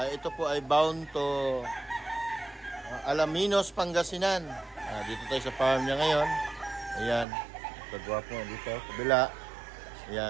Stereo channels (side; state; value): left; drops out; at 7.2 s